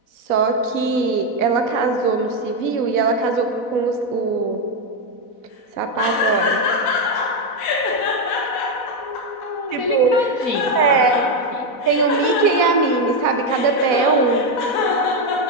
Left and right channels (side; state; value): right; late; 4.1 ms